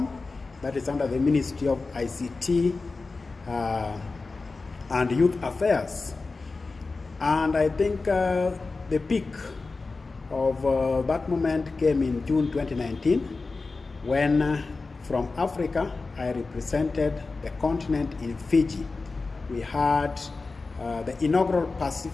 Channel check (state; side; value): quieter; right; 3.8 dB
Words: that is under the Ministry of ICT and Youth Affairs. And I think the peak of that moment came in June 2019, when from Africa I represented the continent in Fiji. We had the inaugural